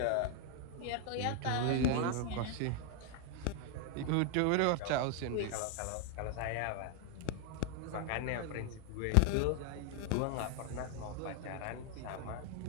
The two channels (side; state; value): both; different; correlation 0.00